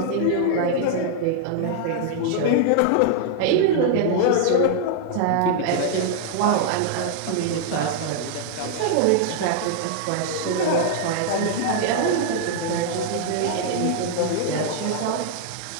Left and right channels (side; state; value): both; different; correlation -0.01